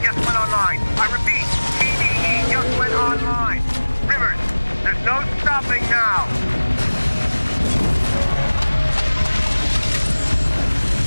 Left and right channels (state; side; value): inverted; both; correlation -1.00